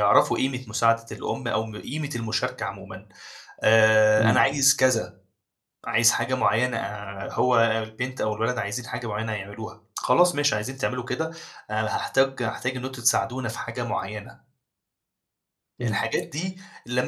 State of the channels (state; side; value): identical; both; correlation 1.00